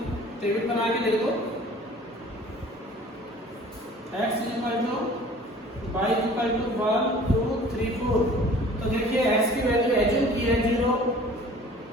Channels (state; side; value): normal; both; correlation 0.48